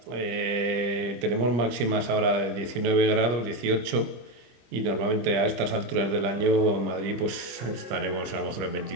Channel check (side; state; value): left; late; 25 ms